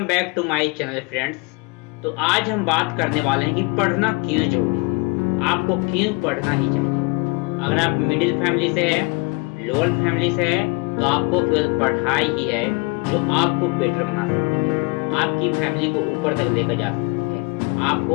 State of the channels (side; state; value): right; quieter; 29.1 dB